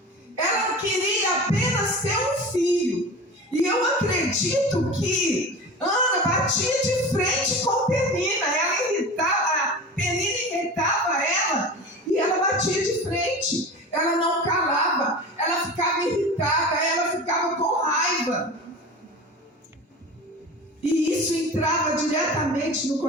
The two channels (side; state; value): both; normal; correlation 0.33